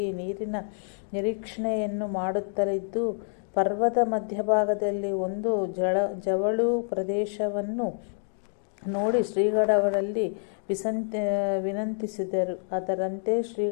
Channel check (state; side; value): silent; right; 60 dB below the other